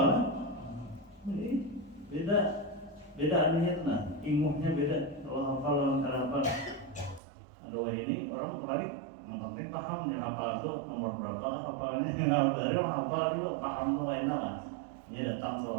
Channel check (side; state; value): left; drops out; at 7.2 s